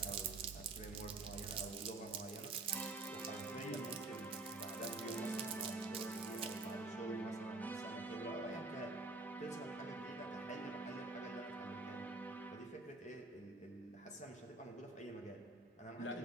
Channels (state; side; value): quieter; left; 3.3 dB